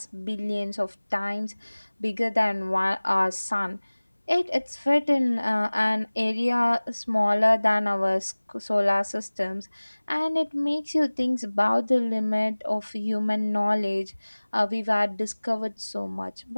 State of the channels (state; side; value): inverted; both; correlation -1.00